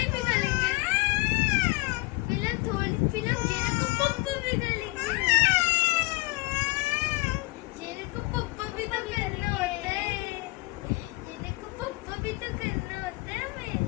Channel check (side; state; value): right; quieter; 24.0 dB